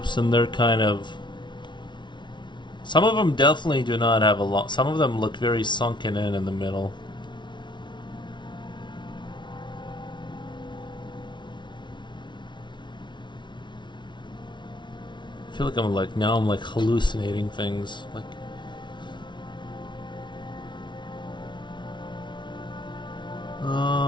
and they're kind of... Some of them definitely do not have a lot. Some of them look very sunken in the middle. I feel like I'm hallucinating things.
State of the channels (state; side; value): late; right; 0.23 ms